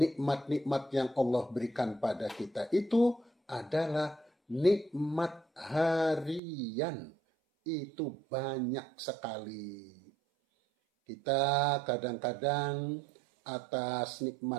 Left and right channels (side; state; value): left; drops out; at 6.4 s